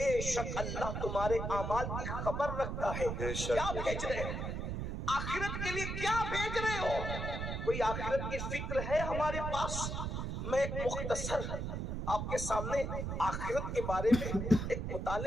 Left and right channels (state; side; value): noise; right; rumble, 3 dB below the sound